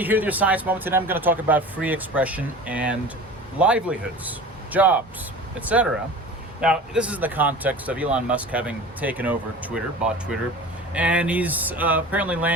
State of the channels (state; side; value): normal; both; correlation 0.38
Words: here with your Science Moment. Today I'm going to talk about free expression and livelihoods, jobs, etc. Now, this is in the context of Elon Musk having taken over Twitter, bought Twitter, and he's apparently